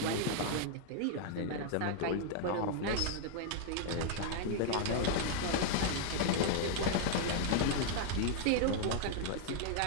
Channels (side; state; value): both; different; correlation 0.00